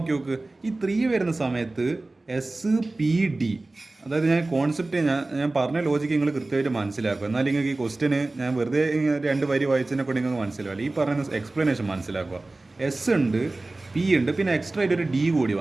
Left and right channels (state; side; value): quieter; left; 3.0 dB